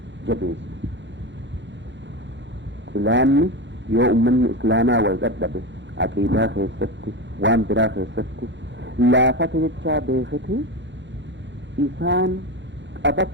jabeessu xilaanni yoo ummanni islaamaa wal dadhabe aqiidaa keessatti waan biraa keessatti laafata jechaa beekati isaan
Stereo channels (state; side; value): late; left; 0.53 ms